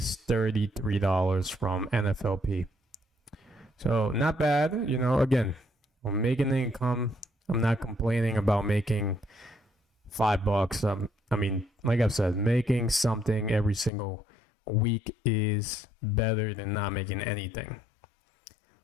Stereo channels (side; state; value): right; drops out; at 13.9 s